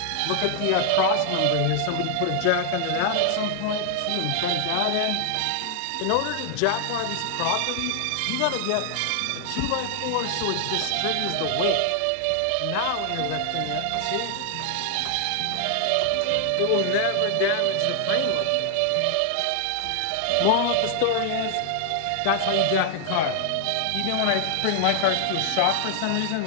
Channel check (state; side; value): different; both; correlation 0.00